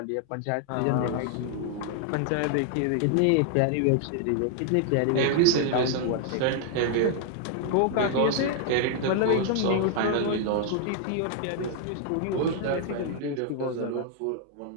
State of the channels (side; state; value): both; different; correlation 0.00